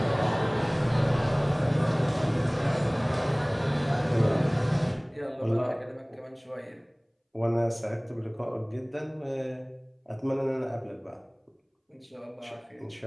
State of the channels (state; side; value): identical; both; correlation 1.00